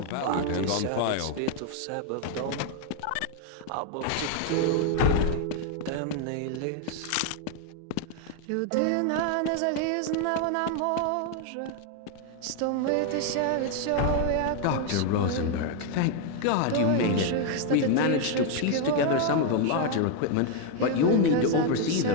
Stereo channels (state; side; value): different; both; correlation 0.01